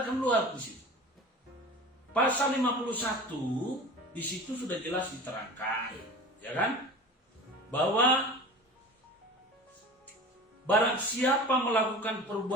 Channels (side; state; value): both; normal; correlation 0.36